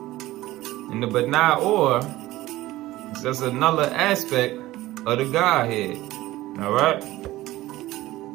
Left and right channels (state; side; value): quieter; left; 17.0 dB